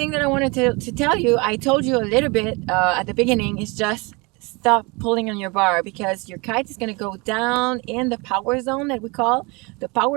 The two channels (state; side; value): quieter; left; 27.5 dB